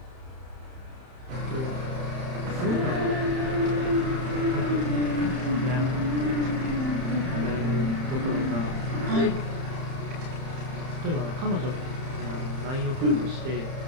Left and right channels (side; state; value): left; late; 31 ms